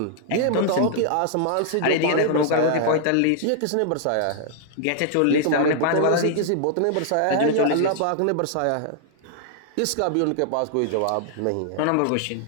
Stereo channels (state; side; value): different; both; correlation -0.01